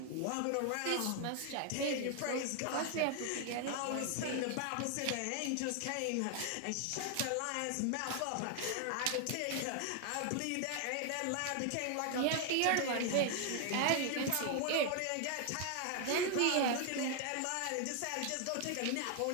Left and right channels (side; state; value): both; different; correlation 0.00